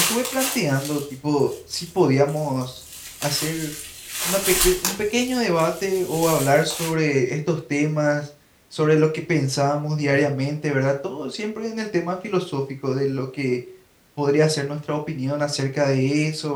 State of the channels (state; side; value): identical; both; correlation 1.00